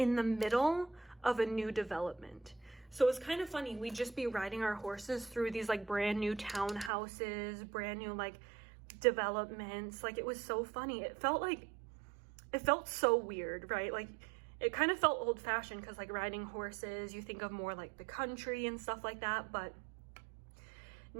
the middle of a new development. So it's kind of funny. We'd just be riding our horses through these like brand new townhouses, brand new like developments. Like it was so funny. It felt so weird, right? Like it kind of felt old fashioned because like riding horses, you think of more like the country and stuff like that. But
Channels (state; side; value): drops out; left; at 6.9 s